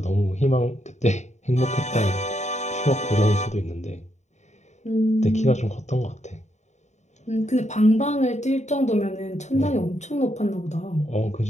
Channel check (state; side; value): late; right; 0.34 ms